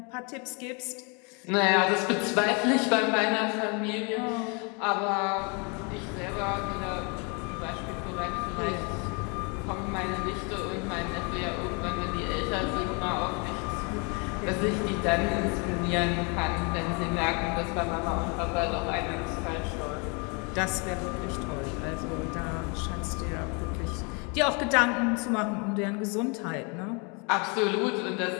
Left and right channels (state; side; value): quieter; right; 33.1 dB